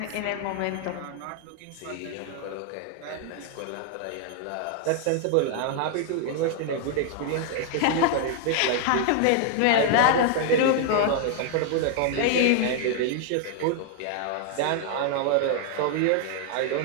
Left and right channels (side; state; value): both; different; correlation 0.00